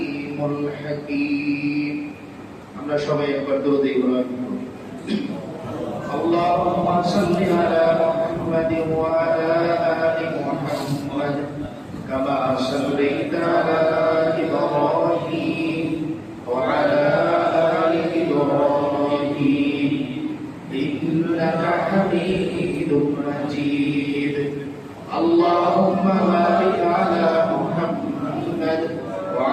الحكيم. আমরা সবাই একবার দরুদ ইব্রাহিম اللهم صل على محمد وعلى آل محمد كما صليت على إبراهيم وعلى آل إبراهيم إنك حميد مجيد. اللهم بارك على محمد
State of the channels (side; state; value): both; identical; correlation 1.00